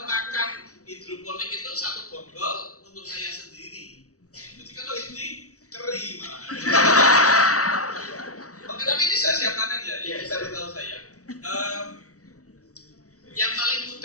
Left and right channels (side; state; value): right; late; 0.66 ms